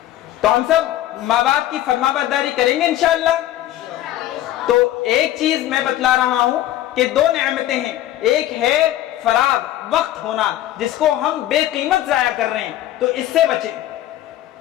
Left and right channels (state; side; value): quieter; right; 13.6 dB